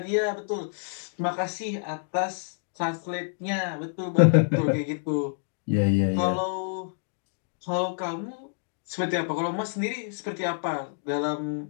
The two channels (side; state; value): right; silent; digital silence